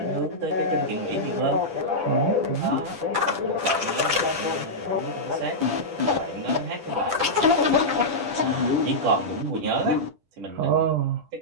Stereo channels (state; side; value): late; left; 10 ms